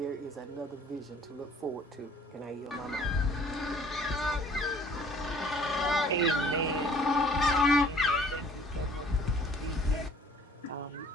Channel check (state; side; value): normal; both; correlation 0.55